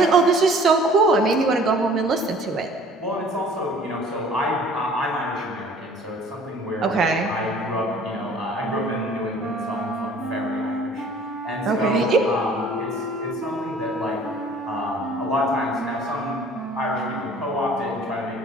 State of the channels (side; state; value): both; normal; correlation 0.51